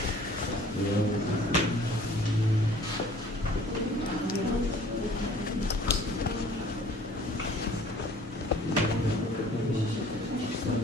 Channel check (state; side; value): normal; both; correlation 0.52